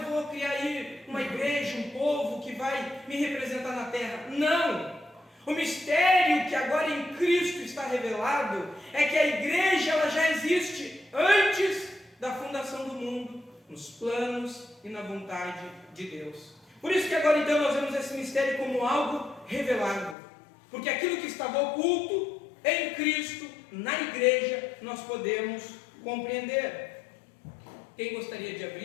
vou criar aí uma igreja, um povo que vai me representar na terra. Não! O mistério que agora em Cristo está revelado é que a igreja, ela já existe antes da fundação do mundo, nos planos e na vontade de Deus. Por isso que agora então nós vemos esse mistério como algo revelado, porque aquilo que estava oculto em Cristo, na igreja, nós podemos compreender. Quem gostaria de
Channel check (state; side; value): drops out; right; at 20.2 s